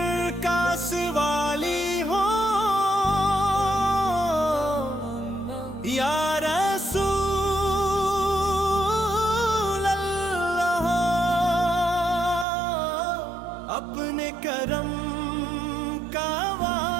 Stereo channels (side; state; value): left; drops out; at 12.5 s